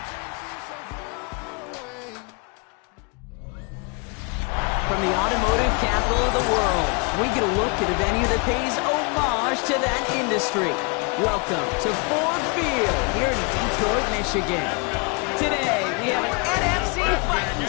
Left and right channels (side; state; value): right; quieter; 32.2 dB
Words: the automotive capital of the world, we get a look at a venue that pays homage to that industry. Welcome to Ford Field here in Detroit, Michigan. Today, we have an NFC fighting